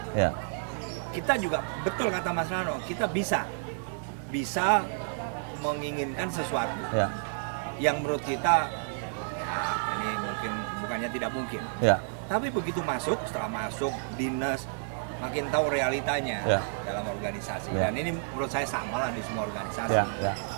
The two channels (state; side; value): silent; left; digital silence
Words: Ya. kita juga betul kata Mas Rano, kita bisa menginginkan sesuatu Ya. yang menurut kita ya ini mungkin bukannya tidak mungkin. Ya. Tapi begitu masuk, setelah masuk dinas makin tahu realitanya Ya. dalam organisasi. Ya. Dan ini menurut saya sama lah di semua organisasi. Ya. Ya.